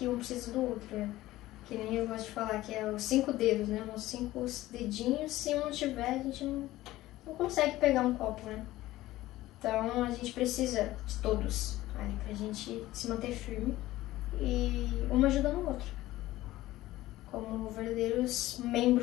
um precisa do outro, né? Que nem eu gosto de falar, que é os 5 dedos, né? Os 5 dedinhos, se um não tiver, a gente não consegue pegar um copo, né? Então, a gente precisa de todos ali pra gente se manter firme e um ajudando o outro. Como verdadeiros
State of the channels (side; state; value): right; quieter; 16.4 dB